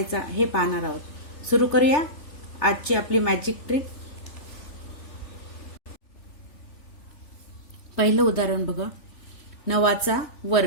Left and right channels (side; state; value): right; late; 3.4 ms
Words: हे पाहणार आहोत। सुरू करूया आजची आपली मॅजिक ट्रिक। पहिलं उदाहरण बघा, 9 चा